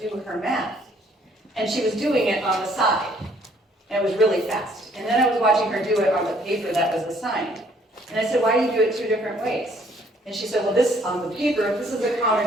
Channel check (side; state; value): both; normal; correlation 0.63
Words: her math, and she was doing it on the side. And it was really fast. And then I was watching her do it on the paper that was assigned. And I said, why do you do it 2 different ways? And she said, well, this on the paper, this is a